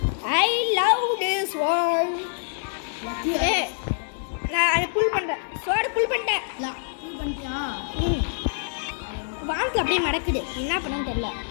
I love this one. நான் அதை புல் பண்ணுறேன். ஸ்வாடு புல் பண்ணிட்டேன். ஃபுல் பண்ணிட்டியா? வானத்தில் அப்படியே மடக்குது. என்ன பண்ணன்னு தெரியல.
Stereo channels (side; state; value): right; silent; digital silence